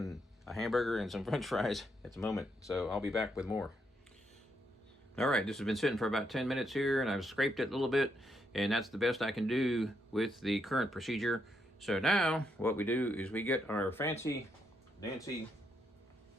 a hamburger and some french fries at the moment, so I'll be back with more. All right, this has been sitting for about 10 minutes here, and I've scraped it a little bit, and that's the best I can do with the current procedure. So now what we do is we get our fancy Nancy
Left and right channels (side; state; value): both; normal; correlation 0.78